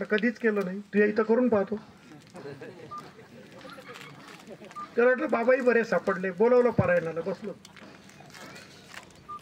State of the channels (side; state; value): both; identical; correlation 1.00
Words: कधीच केलं नाही. तू इथं करून पाहतो. तर म्हटलं बाबाही बरे सापडले, बोलवलं पारायणाला, बसलो,